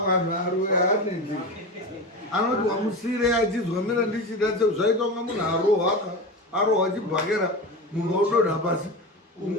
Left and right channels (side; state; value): both; normal; correlation 0.25